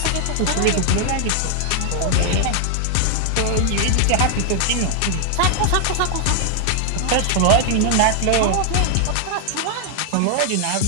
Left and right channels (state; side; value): different; both; correlation 0.00